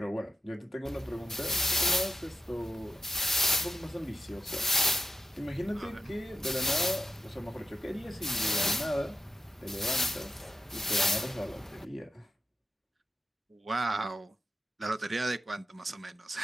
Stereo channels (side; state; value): both; normal; correlation 0.91